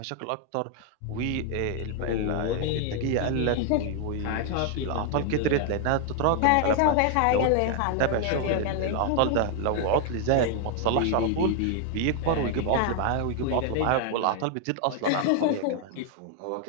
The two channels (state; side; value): different; both; correlation 0.00